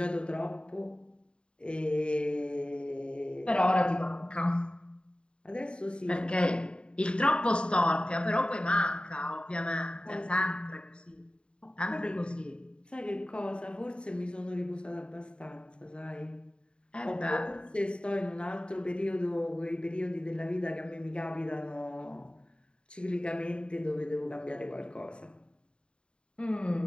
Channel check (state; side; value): late; right; 0.052 ms